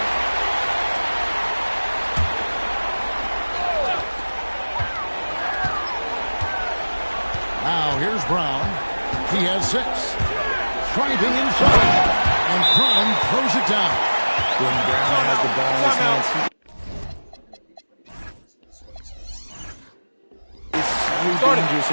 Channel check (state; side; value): inverted; both; correlation -1.00